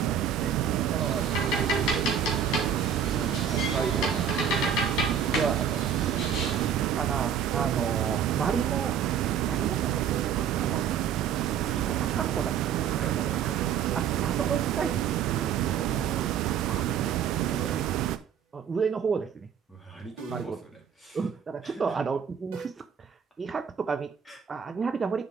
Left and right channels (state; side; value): quieter; left; 7.9 dB